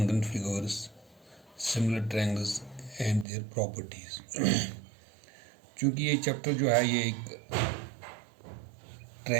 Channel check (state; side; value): drops out; left; at 3.2 s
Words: figures, similar triangles and their properties. चूँकि ये चैप्टर जो है ये एक